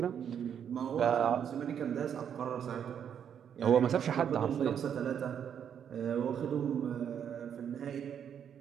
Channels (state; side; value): quieter; left; 8.4 dB